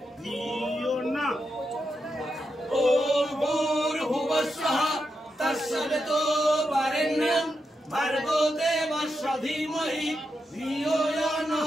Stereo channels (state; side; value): normal; both; correlation 0.86